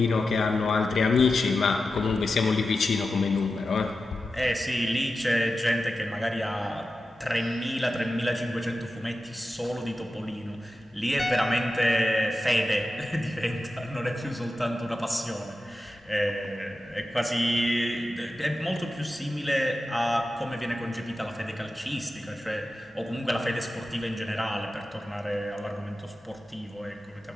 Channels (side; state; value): both; normal; correlation 0.92